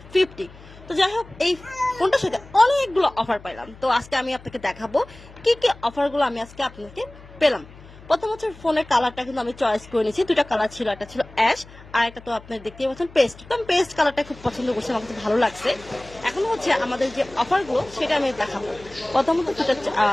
50। তো যাই হোক, এই ফোনটার সাথে অনেকগুলো অফার পাইলাম। তো আজকে আমি আপনাকে দেখাবো কি কি অফারগুলো আমি আজকে আপনাকে পেলাম। প্রথম হচ্ছে ফোনের কালারটা কিন্তু আমি চয়েস করে নিয়েছি। দুটা কালার ছিল, একটা ছিল অ্যাশ আর একটা তো আপনি দেখতেই পাচ্ছেন পেস্ট। তো আমি পেস্ট কালারটা খুব পছন্দ করছি, আমার কাছে ভালো লাগছে। এখন হচ্ছে আমাদের যে অফারগুলো সেটা আমি দেখাবো। প্রথমত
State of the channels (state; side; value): noise; left; hum, 20 dB below the sound